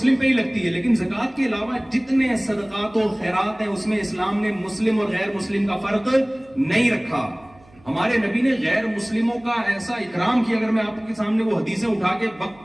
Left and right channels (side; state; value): right; noise; hum, 28 dB below the sound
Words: پہ ہی لگتی ہے, لیکن زکات کے علاوہ جتنے صدقات و خیرات ہیں اس میں اسلام نے مسلم اور غیر مسلم کا فرق نہیں رکھا. ہمارے نبی نے غیر مسلموں کا ایسا اکرام کیا, اگر میں آپ کے سامنے وہ حدیثیں اٹھا کے